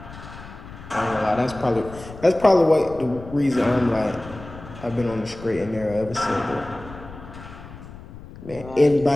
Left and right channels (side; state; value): left; noise; rumble, 16 dB below the sound